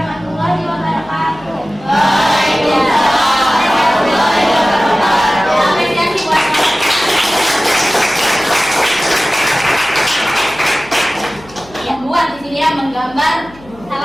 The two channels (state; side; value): noise; left; hum, 23 dB below the sound